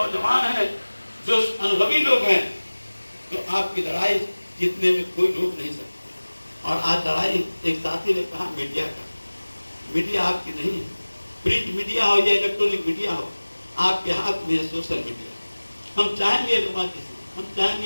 हैं, जो अनुभवी लोग हैं, जो आपकी लड़ाई जीतने में कोई रोक नहीं सकता। और आज लड़ाई एक साथी ने कहा मीडिया का, मीडिया आपकी नहीं है, प्रिंट मीडिया हो या इलेक्ट्रॉनिक मीडिया हो, आपके हाथ में है सोशल मीडिया। हम चाहेंगे रुमा जी से, हम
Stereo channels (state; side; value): inverted; both; correlation -1.00